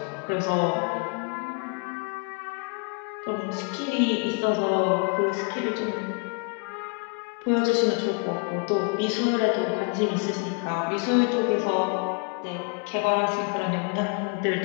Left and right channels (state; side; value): quieter; right; 36.1 dB